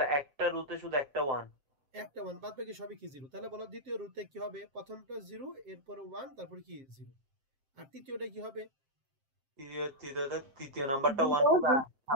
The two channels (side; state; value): left; late; 7.5 ms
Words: একটা রুতে শুধু একটা 1। একটা 1 বাদ বাকি সবই কি 0। তাহলে বলো দ্বিতীয় রুতে কি হবে? প্রথমটা 0 এরপরে 1 তারপর কি 0। আর তৃতীয়টা কি হবে? তৃতীয় নাম্বারটা 1 হবে